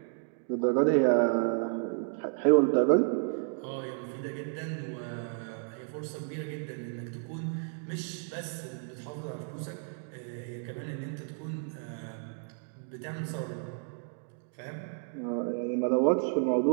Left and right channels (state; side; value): silent; left; 57 dB below the other